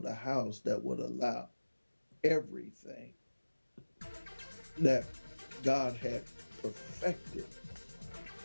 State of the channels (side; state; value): both; inverted; correlation -1.00